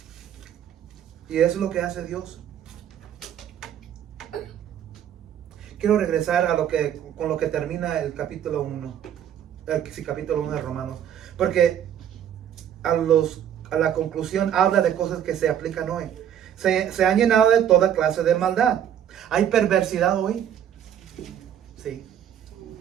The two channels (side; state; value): left; quieter; 9.8 dB